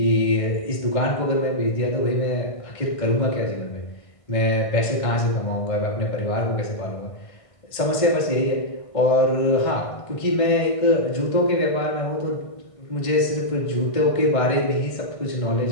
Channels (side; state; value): right; late; 1.5 ms